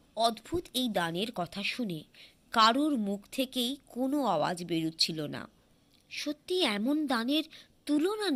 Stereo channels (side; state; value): both; identical; correlation 1.00